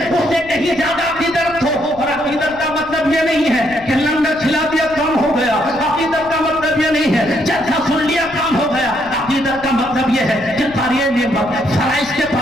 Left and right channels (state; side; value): noise; left; rumble, 20 dB below the sound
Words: उससे कहीं ज्यादा अकीदत हो। और अकीदत का मतलब ये नहीं है कि लंगर खिला दिया काम हो गया, अकीदत का मतलब ये नहीं है जलसा सुन लिया काम हो गया। अकीदत का मतलब ये है कि कारी नेमत फराइज के